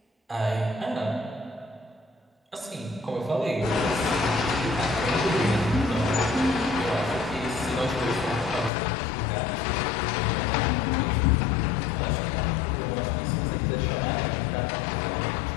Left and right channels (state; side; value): drops out; right; at 8.7 s